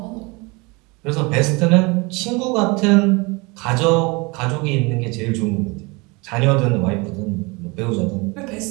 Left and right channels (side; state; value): left; quieter; 26.8 dB